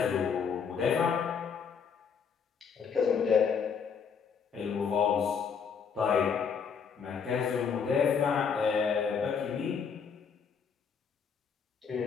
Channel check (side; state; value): right; quieter; 6.5 dB